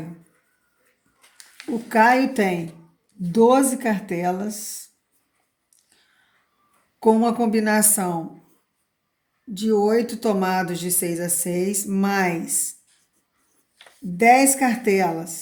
O Caio tem 12 cartelas com uma combinação de 8 tomados de 6 a 6, mais 10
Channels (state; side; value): identical; both; correlation 1.00